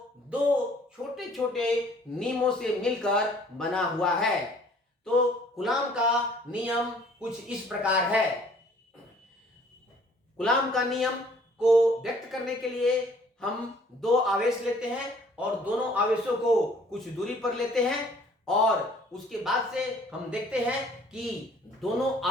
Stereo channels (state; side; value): normal; both; correlation 0.57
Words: दो छोटे छोटे नियमों से मिलकर बना हुआ है। तो कूलाम का नियम कुछ इस प्रकार है। कूलाम का नियम को व्यक्त करने के लिए हम दो आवेश लेते हैं और दोनों आवेशों को कुछ दूरी पर लेते हैं और उसके बाद से हम देखते हैं कि दोनों